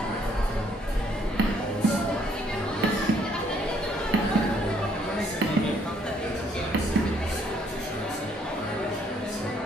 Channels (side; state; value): both; normal; correlation 0.67